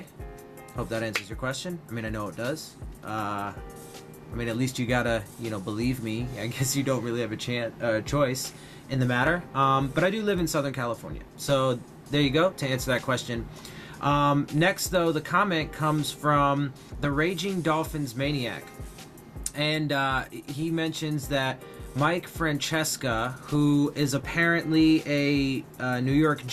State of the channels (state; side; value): identical; both; correlation 1.00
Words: hope that answers your question. I mean, I know it does. At least you gotta, believe me. I guess you don't really have a choice in the matter. But I do live in Southern California. So there you go, to answer that question. Next, though, the comment comes from the Raging Dolphins Maniac. And he mentions that Mike Francesca, who is apparently a New York